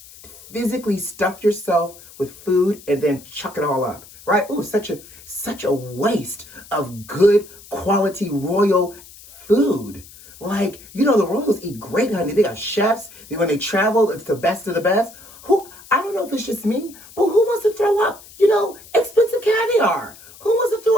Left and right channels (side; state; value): left; noise; hiss, 20 dB below the sound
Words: physically stuff yourself with food and then chuck it all up, right? Ooh, such a waste of good quality royal food. Like, you know, the royals eat great, honey. They got chefs. When they travel, it's the best of the best. I don't know if it's just me, but who wants to throw up, you know, expensive caviar? Who wants to